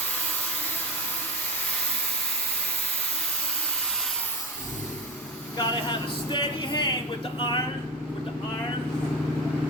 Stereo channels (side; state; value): both; normal; correlation 0.21